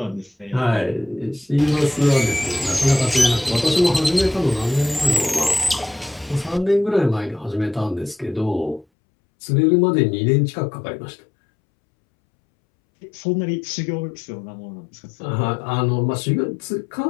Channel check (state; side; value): drops out; right; at 8.8 s